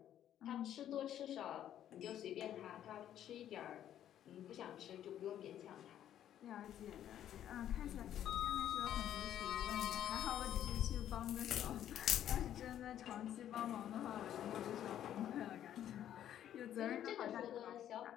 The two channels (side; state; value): right; quieter; 11.0 dB